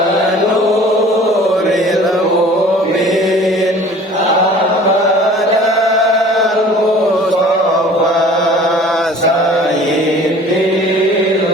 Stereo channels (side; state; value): both; normal; correlation 0.47